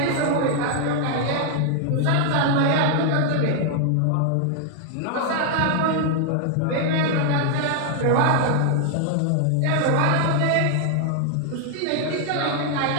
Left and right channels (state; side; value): different; both; correlation 0.00